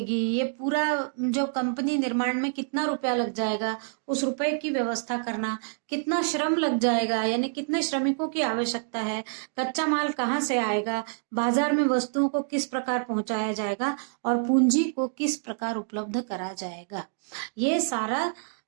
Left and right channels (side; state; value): left; silent; digital silence